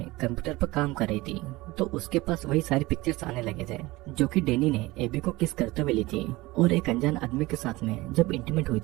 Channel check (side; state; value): left; quieter; 20.5 dB